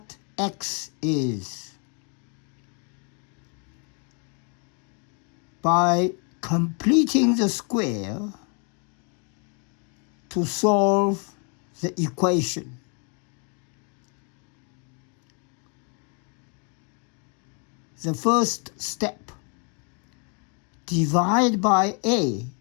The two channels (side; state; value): right; quieter; 38.0 dB